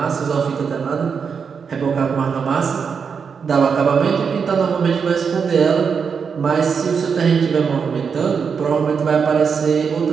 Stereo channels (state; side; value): quieter; left; 6.1 dB